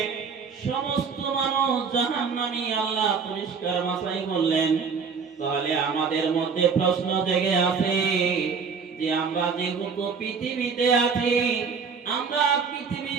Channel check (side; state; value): left; quieter; 5.6 dB